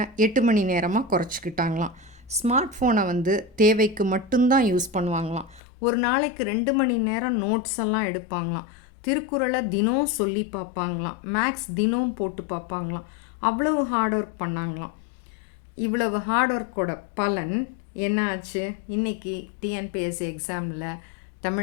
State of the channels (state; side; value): drops out; right; at 5.6 s